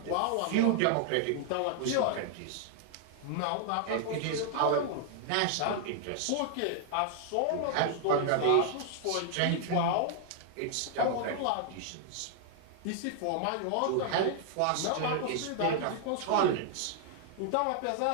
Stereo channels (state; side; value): different; both; correlation 0.00